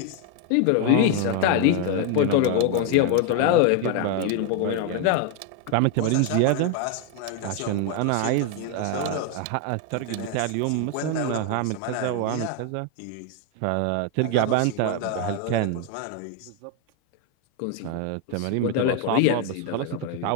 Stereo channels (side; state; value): both; different; correlation 0.01